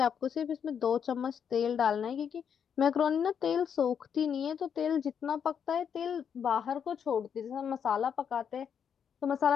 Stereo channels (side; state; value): right; quieter; 7.7 dB